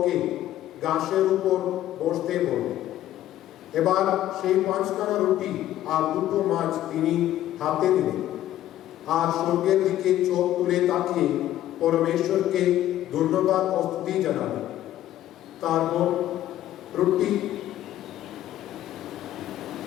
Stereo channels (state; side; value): quieter; right; 13.1 dB